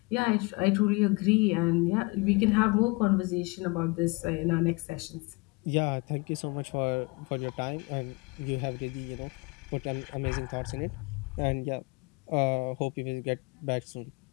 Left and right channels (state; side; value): quieter; right; 27.0 dB